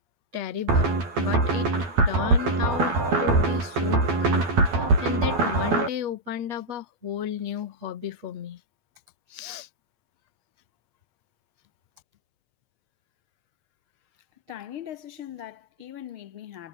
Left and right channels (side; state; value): left; late; 8.4 ms